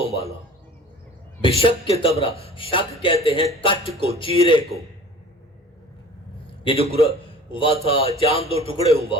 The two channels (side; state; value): both; normal; correlation 0.44